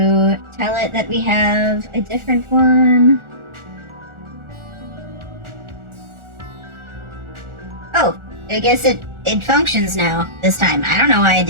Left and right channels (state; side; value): late; left; 1.4 ms